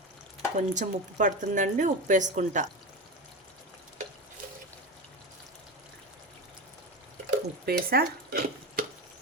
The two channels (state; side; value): normal; both; correlation 0.21